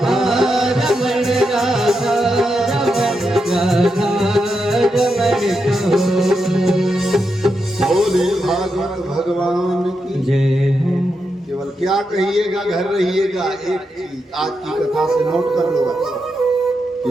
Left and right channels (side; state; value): both; normal; correlation 0.85